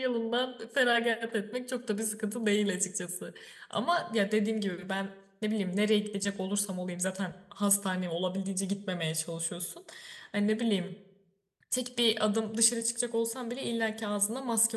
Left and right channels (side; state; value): both; identical; correlation 1.00